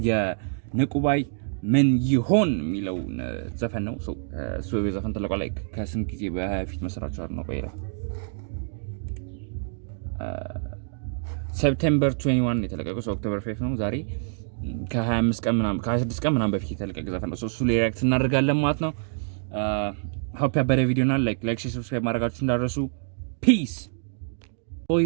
የንቁባይ ምን ይሆን የሚለው ዘፈን ነው። ሶ የዘፈን ተለቋል ላይ ከስንት ጊዜ በፊት መስራቹ ነው ቆይራ ሴፕቴምበር 21 የተለቀቀው ኦክቶበር 5 ነው ዛሬ ከ25 ቀን ምናምን ከ26 ቀን ምናምን በፊት የተለቀቀ ዘፈን ነው። እሱ ላይ ሪአክት እናደርጋለን ማለት ነው። ሆፕ ያበረ ቪዲዮ እና ላይክ ሰብስክራይብ ማድረጋችሁ እንዳትረሱ። ፒስ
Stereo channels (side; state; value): left; silent; 61 dB below the other